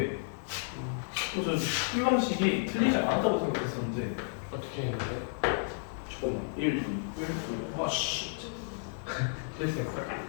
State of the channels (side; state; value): right; silent; digital silence